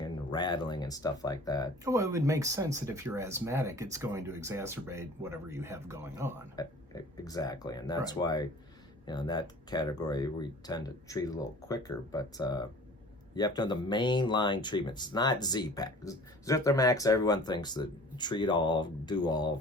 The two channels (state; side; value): normal; both; correlation 0.45